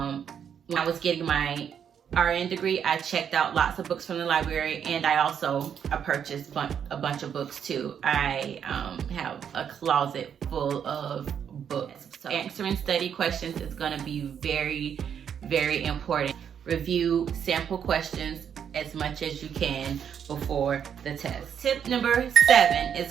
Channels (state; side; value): quieter; left; 8.2 dB